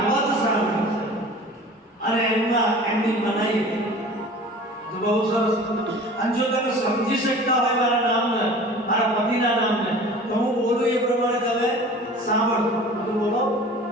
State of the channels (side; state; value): both; normal; correlation 0.42